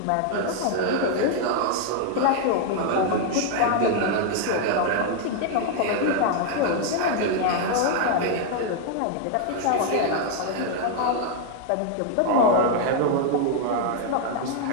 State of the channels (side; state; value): both; different; correlation 0.00